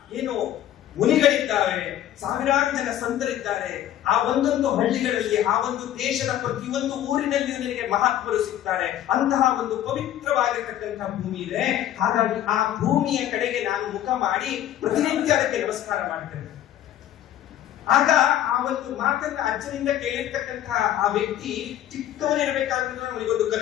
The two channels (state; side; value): quieter; right; 11.9 dB